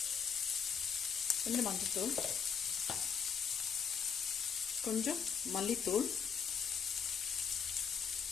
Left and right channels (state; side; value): quieter; right; 6.9 dB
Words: மஞ்சத்தூள், கொஞ்சம் மல்லித்தூள்,